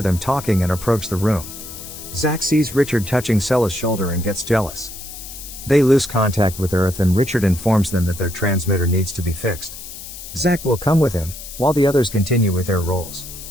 them talking and approach the room. Zach sees Richard touching Sella's shoulder and gets jealous. They lose contact with Earth and Richard informs them that their transmitter needs to be fixed. Zach will come with him, while the others continue with their roles.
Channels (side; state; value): left; noise; hiss, 12 dB below the sound